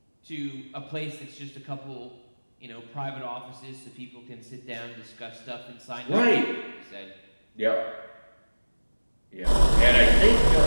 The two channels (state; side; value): inverted; both; correlation -1.00